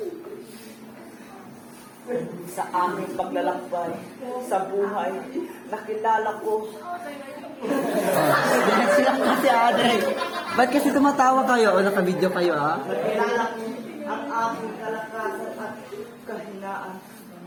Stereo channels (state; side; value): identical; both; correlation 1.00